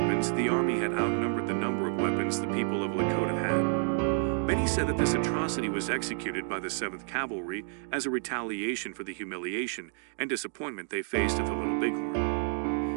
the Army had outnumbered the number of weapons the people of Lakota had. Many said that this atrocity was executed by the 7th Cavalry as a retaliation for the humiliation and disappointment they faced at the Little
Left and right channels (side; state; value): left; silent; 58 dB below the other